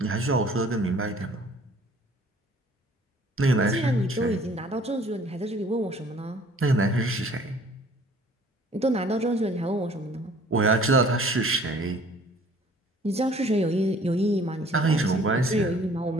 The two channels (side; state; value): both; normal; correlation 0.54